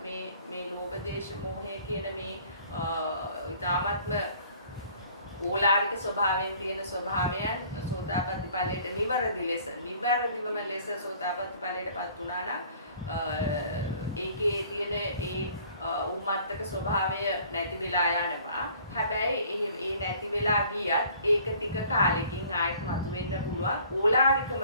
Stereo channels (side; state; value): both; inverted; correlation -0.54